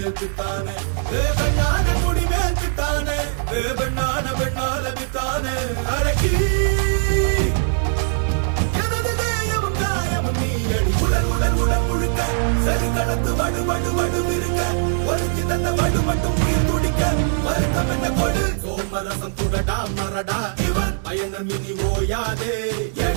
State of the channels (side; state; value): left; silent; 61 dB below the other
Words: பெண்ணான கொடி மேல்த்தானே பெண்ணான பெண்ணால வித்தானே அரக்கி எனது தேயமும் காயமும் நீ அடி உடல் உடல் உடல் முழுக்க சரி கடந்து வடு வடு வடு இருக்க ஒருத்தி தந்த வடு மட்டும் உயிர் துடிக்க வருத்தம் என்ன கொடு சோமரசம் துடடா மரடா இவன் பயணம் இனி ஓயாதே